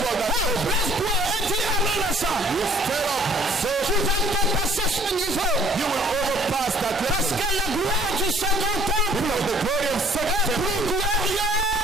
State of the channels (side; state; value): both; normal; correlation 0.56